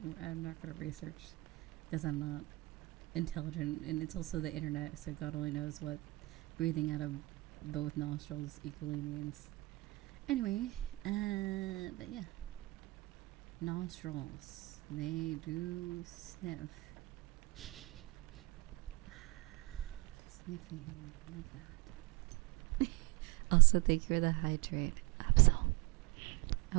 I'm not going to research because I'm not intelligent, and it's also the internet, so God only knows what breathing out of both nostrils equally means. Anyway, but yeah, nostrils, they do sniff. Sniffing, love that. Also, thank you for the hydrate, Absol.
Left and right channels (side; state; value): left; quieter; 22.4 dB